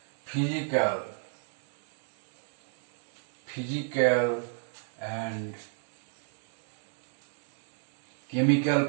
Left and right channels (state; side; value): silent; left; digital silence